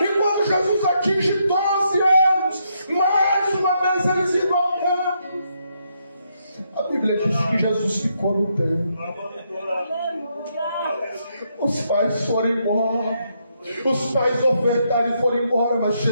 quando Jesus atinge 12 anos, mais uma vez eles iam ao templo. A Bíblia diz que Jesus ficou no templo. Os pais foram embora, os pais ofertaram e foram embora, mas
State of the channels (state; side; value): inverted; both; correlation -0.77